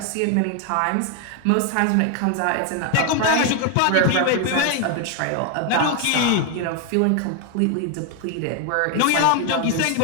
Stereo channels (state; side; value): different; both; correlation 0.01